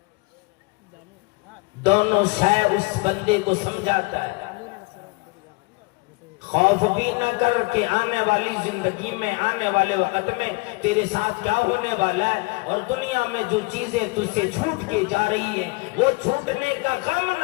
دونوں شے اس بندے کو سمجھاتا ہے۔ خوف بھی نہ کر کہ آنے والی زندگی میں، آنے والے وقت میں تیرے ساتھ کیا ہونے والا ہے، اور دنیا میں جو چیزیں تجھ سے چھوٹ کے جا رہی ہیں وہ چھوٹنے کا غم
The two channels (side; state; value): right; quieter; 26.9 dB